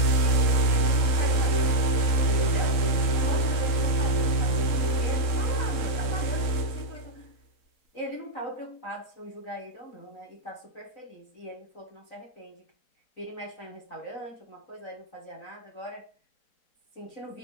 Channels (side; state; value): right; late; 3.7 ms